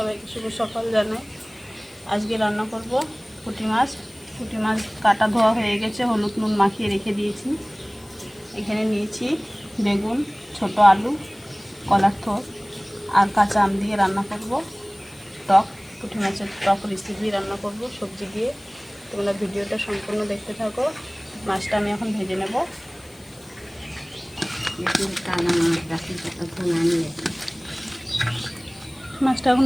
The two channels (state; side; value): noise; left; hiss, 25 dB below the sound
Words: শুভ সকাল জানাই। আজকে রান্না করব পুঁটি মাছ। পুঁটি মাছ কাটা ধোয়া হয়ে গেছে, হলুদ নুন মাখিয়ে রেখে দিয়েছি। এখানে নিয়েছি বেগুন, ছোট আলু, কলার থোড় আর কাঁচা আম দিয়ে রান্না করব টক। পুঁটি মাছের টক রেসিপি রান্না করব সবজি দিয়ে। তোমরা ভিডিওটা সম্পূর্ণ দেখতে থাকো। মাছটা আমি এখন ভেজে নেব। মাছটা এখন